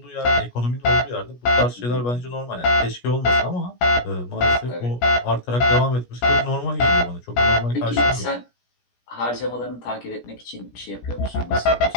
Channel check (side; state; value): right; late; 17 ms